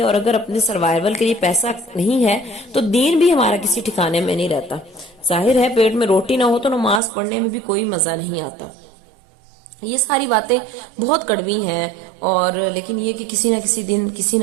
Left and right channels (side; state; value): left; drops out; at 7.0 s